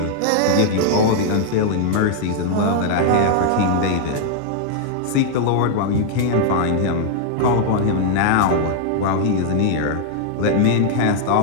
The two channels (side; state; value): both; different; correlation -0.01